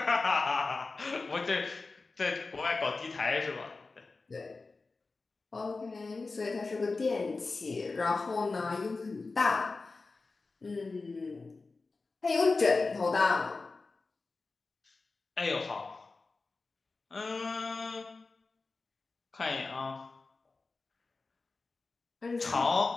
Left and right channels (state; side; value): quieter; right; 3.8 dB